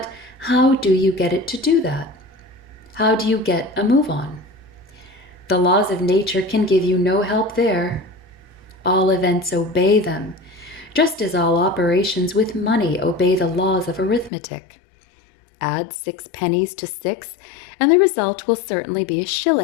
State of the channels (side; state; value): right; drops out; at 14.3 s